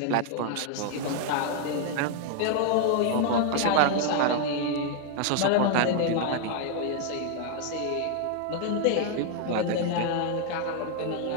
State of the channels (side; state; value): both; different; correlation 0.00